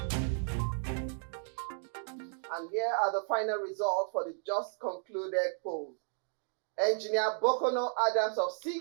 And here are the final results for the just concluded polls. Engineer Bokono Adams of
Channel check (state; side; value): silent; left; digital silence